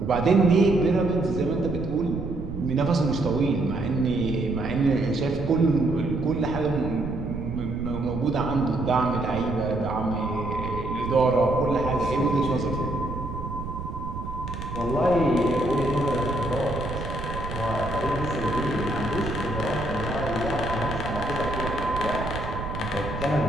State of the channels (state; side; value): noise; right; rumble, 7 dB below the sound